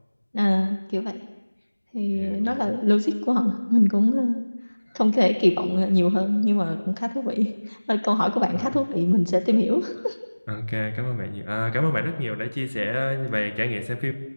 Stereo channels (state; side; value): inverted; both; correlation -1.00